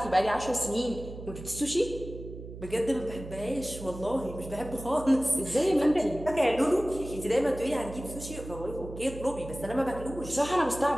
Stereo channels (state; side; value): noise; right; hum, 12 dB below the sound